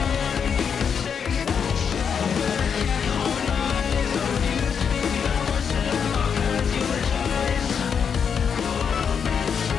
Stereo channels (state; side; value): quieter; right; 6.9 dB